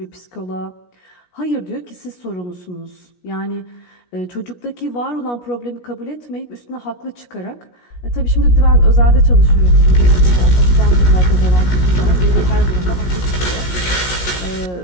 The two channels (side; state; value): right; late; 17 ms